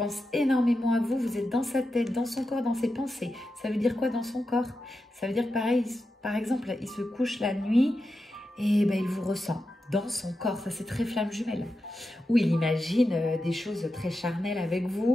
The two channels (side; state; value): both; normal; correlation 0.89